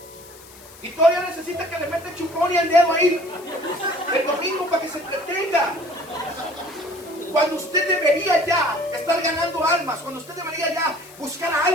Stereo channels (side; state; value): left; noise; hiss, 21 dB below the sound